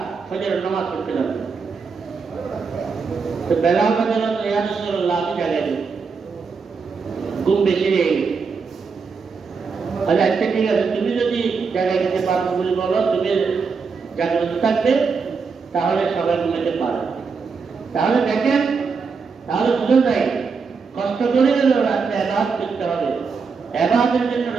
ফজরের নামাজ পড়তে যাবে। তো বেলাল রাদিয়াল্লাহু আনহু, ইয়া রাসূলুল্লাহ, আমি জাগাই দিই, ঘুম বেশি হয়ে গেছে। আচ্ছা ঠিক আছে, তুমি যদি জাগাই দিতে পারো বলে বলো, তুমি জাগ্রত থাকবে, তাহলে সবাই ঘুমাইতে পারে। তাহলে দেখেন, তাহলে বুঝে যায় কষ্ট করে গেলেও রাত্রে ইবাদত করতে হবে, ইবাদতের জন্য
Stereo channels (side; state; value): left; quieter; 5.2 dB